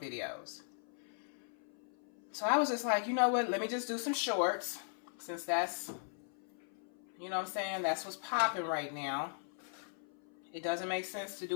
So I was just like, you know what, let me just do some shorts, since that's, you know what I'm saying, that's what's popping right now. It doesn't make sense to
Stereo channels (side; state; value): right; silent; 52 dB below the other